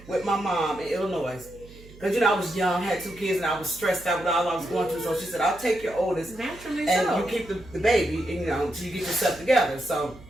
with my mom in Illinois. Because, I was young, had 2 kids, and I was stressed out with all I was going through. So she said, I'll take your oldest. Naturally and so. You keep the baby, and, until you get yourself together. So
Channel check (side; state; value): right; noise; hum, 20 dB below the sound